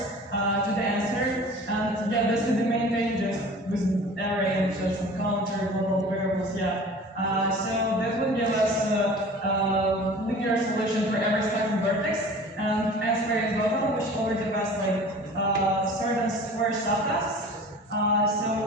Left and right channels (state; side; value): normal; both; correlation 0.42